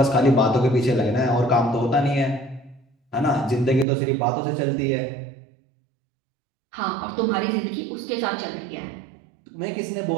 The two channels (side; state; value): left; drops out; at 3.9 s